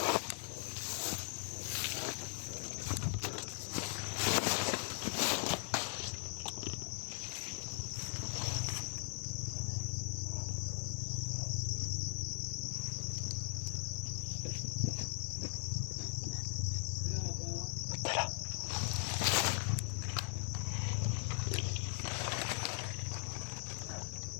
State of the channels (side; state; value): right; silent; 52 dB below the other